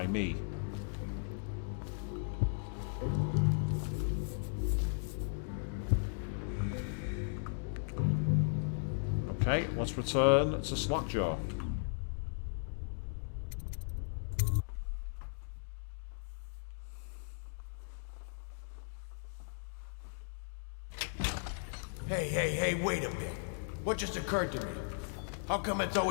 me. Okay, let's return to Slackjaw. Hey, wait a bit. What just occurred to me? How come it's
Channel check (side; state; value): right; silent; digital silence